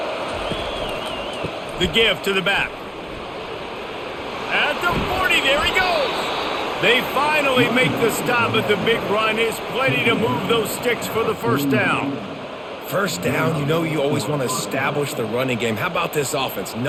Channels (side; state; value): both; identical; correlation 1.00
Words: The give to the back. At the 40, there he goes. They finally make the stop, but the big run is plenty to move those sticks for the first down. First down, you know you always want to establish the running game. How about this offense?